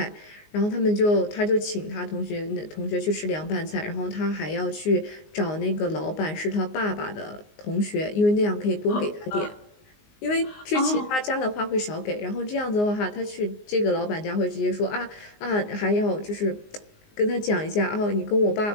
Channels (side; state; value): right; late; 19 ms